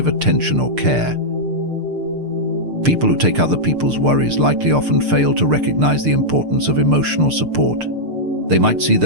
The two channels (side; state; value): left; late; 6.7 ms